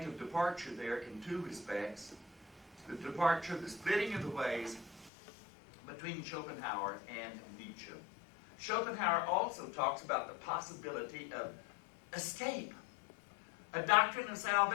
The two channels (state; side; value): drops out; right; at 5.1 s